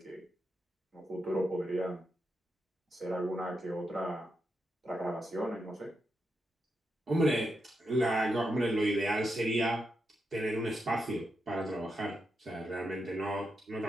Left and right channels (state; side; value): normal; both; correlation 0.85